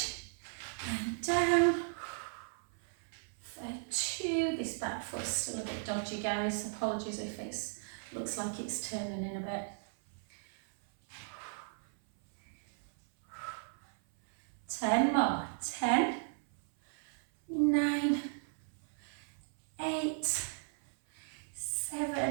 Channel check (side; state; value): left; silent; 54 dB below the other